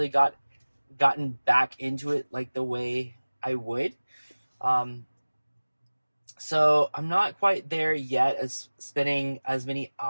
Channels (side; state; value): both; inverted; correlation -1.00